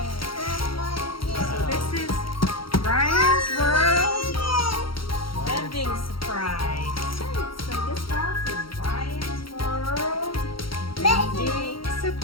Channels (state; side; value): late; right; 0.74 ms